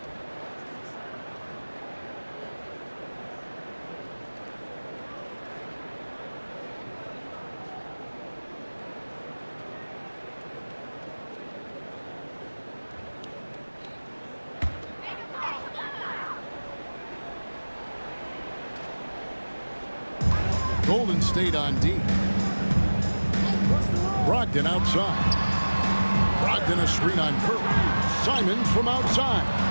Golden State on D. Brogdon outside. Brogdon a screen on Curry. Simons from outside.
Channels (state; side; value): inverted; both; correlation -1.00